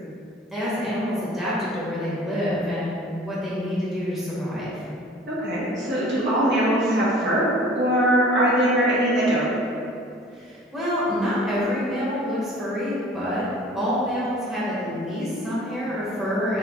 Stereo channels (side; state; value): both; normal; correlation 0.47